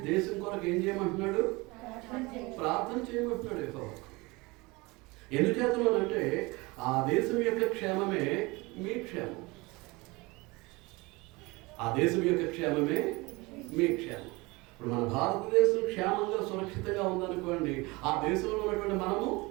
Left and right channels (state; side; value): quieter; left; 24.1 dB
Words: దేశం కొరకు ఏం చేయమంటున్నాడు? ప్రార్థన చేయమంటున్నాడు యెహోవా. ఎందుచేతనంటే ఆ దేశం యొక్క క్షేమమే మీ క్షేమం. ఆ దేశం యొక్క క్షేమమే మీ క్షేమం. ఇప్పుడు మన భారతదేశం క్షేమంగా సురక్షితంగా ఉందనుకోండి, ఆ దేశంలో ఉన్నటువంటి మనము